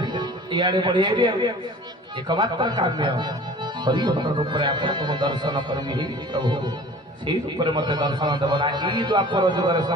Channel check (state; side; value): normal; both; correlation 0.45